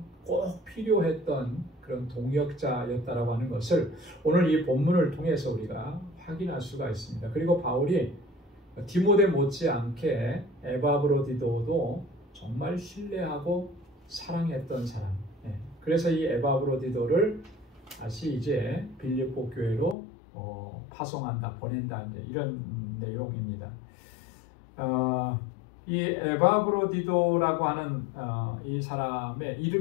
필요했던 그런 동역자였다라고 하는 것을 오늘 이 본문을 통해서 우리가 확인할 수가 있습니다. 그리고 바울이 디모데 못지않게 에바브로디도도 정말 신뢰하고 사랑했던 사람. 그래서 이 에바브로디도를 다시 이제 빌립보 교회로 파송한다, 보낸다, 이제 이런 내용입니다. 이 에바브로디도라고 하는 이 사람의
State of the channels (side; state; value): right; drops out; at 20.0 s